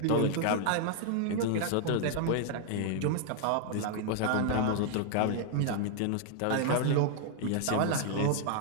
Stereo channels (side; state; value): both; different; correlation 0.00